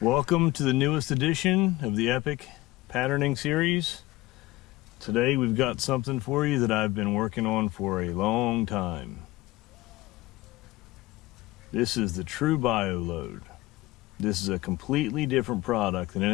welcome to the newest edition of the Epic Patterning series. Today we've got something for you that I've been working on for a long time. This is the True Bio load. This is a completely different product than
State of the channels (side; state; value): right; quieter; 19.2 dB